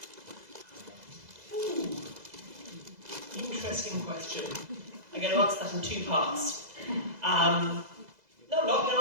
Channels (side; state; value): left; late; 2.0 ms